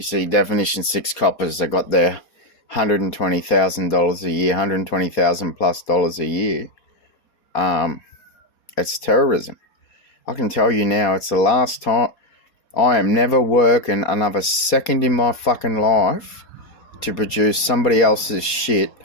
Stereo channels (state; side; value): late; right; 4.3 ms